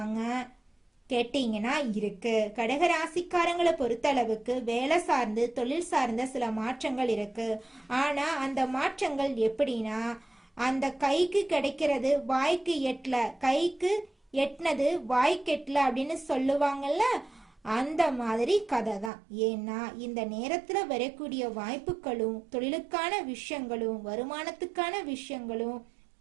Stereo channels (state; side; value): drops out; left; at 19.1 s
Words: கேட்டீங்கன்னா இருக்கு. கடகராசிக்காரங்களை பொறுத்தளவுக்கு வேலை சார்ந்து தொழில் சார்ந்த சில மாற்றங்கள் இருக்கு. ஆனா அந்த மாற்றங்கள் எப்படின்னா, அந்த கைக்கு கிடைக்கிறது வாய்க்கு எட்டல, கைக்கு எட்டினது வாய்க்கு எட்டல அப்படின்னு சொல்லுவாங்கல்ல, அந்த மாதிரி கதை தான். ஏன்னா இந்த நேரத்துல வரக்கூடிய வாய்ப்புகளும் தொழிலுக்கான விஷயங்களும் வருமானத்துக்கான விஷயங்களும்